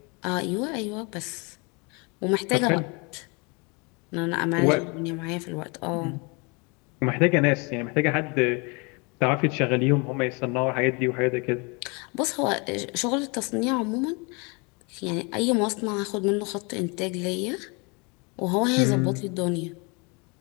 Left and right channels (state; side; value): quieter; right; 30.4 dB